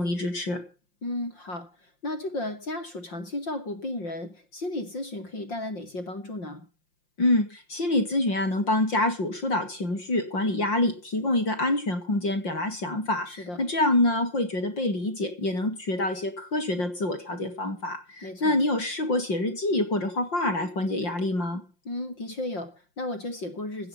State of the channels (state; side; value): late; right; 5.7 ms